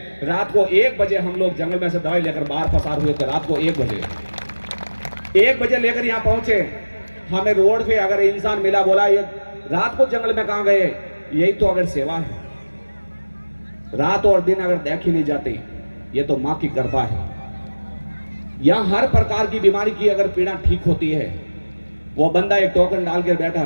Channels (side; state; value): both; inverted; correlation -1.00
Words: रात को 1 बजे हम लोग जंगल में से दवाई लेकर बाहर पसार हुए थे। रात को 1 बजे लेकर यहाँ पहुंचे। हमें रोड पे अगर इंसान मिला, बोला ये रात को जंगल में कहां गए? यही तो अगर सेवा है। रात और दिन अगर देखी नहीं जाती, ये तो माँ की कृपा है। यहां हर प्रकार की बीमारी की अगर पीड़ा ठीक होती है। वो बंदा एक टोकन डाल कर बैठा,